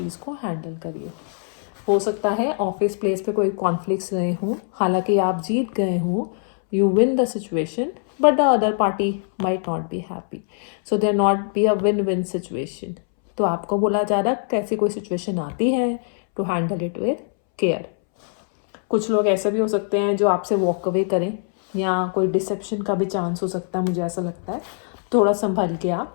को हैंडल करिए। हो सकता है ऑफिस प्लेस पे कोई कॉन्फ्लिक्ट्स रहे हों, हालांकि आप जीत गए हों, you win the situation, but the other party might not be happy, so there not be a win win situation. तो आपको बोला जा रहा है कैसी कोई सिचुएशन आती है to handle it with care. कुछ लोग ऐसे भी हो सकते हैं जो आपसे वॉक अवे करें, या कोई डिसेप्शन का भी चांस हो सकता है, मुझे ऐसा लगता है। थोड़ा संभल के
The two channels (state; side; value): silent; right; 64 dB below the other